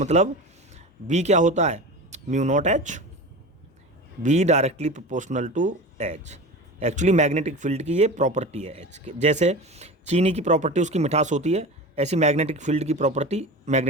बी क्या होता है, mu not H, B directly proportional to H. Actually magnetic field की ये प्रॉपर्टी है एच के। जैसे चीनी की प्रॉपर्टी उसकी मिठास होती है, ऐसी मैग्नेटिक फील्ड की प्रॉपर्टी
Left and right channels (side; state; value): both; normal; correlation 0.31